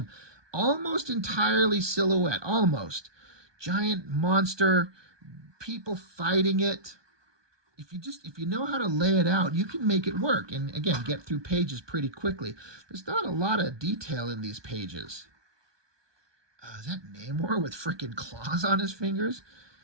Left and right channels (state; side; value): late; left; 1.2 ms